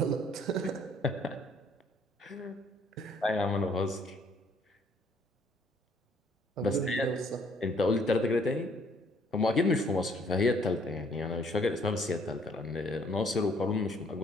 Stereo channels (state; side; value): normal; both; correlation 0.63